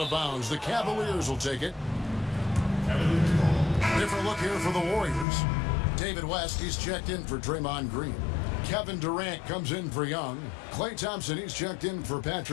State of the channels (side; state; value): right; drops out; at 5.2 s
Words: of bounds. The Cavaliers will take it. Different look here for the Warriors. David West, he's checked in for Draymond Green. Kevin Durant comes in for Young. Klay Thompson, he's checked in for